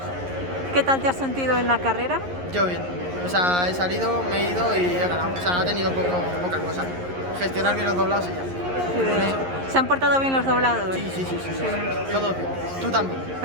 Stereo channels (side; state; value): left; late; 11 ms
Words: ¿Qué tal te has sentido en la carrera? Yo bien. O sea, he salido, me he ido y he ganado. O sea, ha tenido poca cosa. Gestionar bien los doblados y ya. Sí. ¿Se han portado bien los doblados? Sí. Todo bien. Tú también.